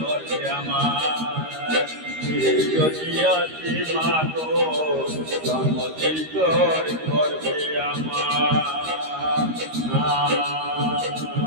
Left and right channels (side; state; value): left; late; 13 ms